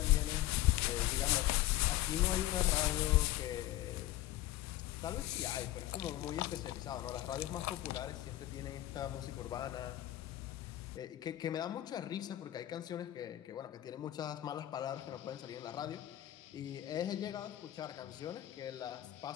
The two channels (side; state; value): right; quieter; 14.8 dB